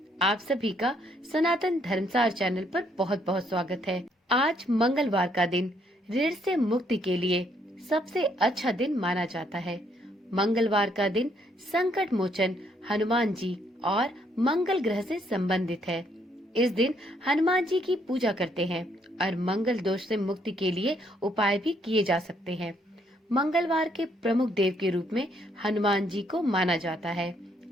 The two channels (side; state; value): both; normal; correlation 0.70